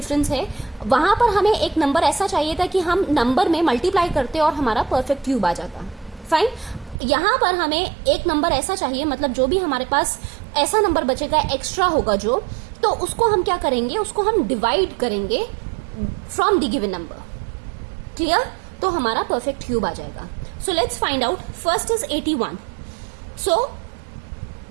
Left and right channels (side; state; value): left; drops out; at 7.0 s